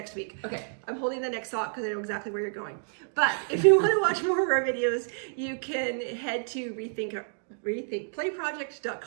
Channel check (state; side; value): silent; left; digital silence